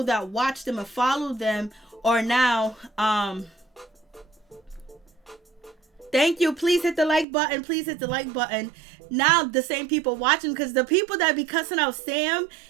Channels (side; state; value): left; drops out; at 7.2 s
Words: that watch them and follow them are now thank you. Please hit the like button. Please hit the like button. Now the same people watching, because the people that be cussing out Sam